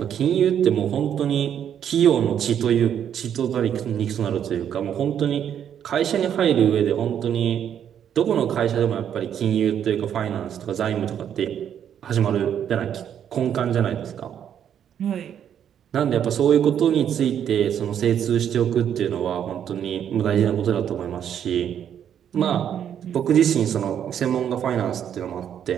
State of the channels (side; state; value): left; quieter; 9.2 dB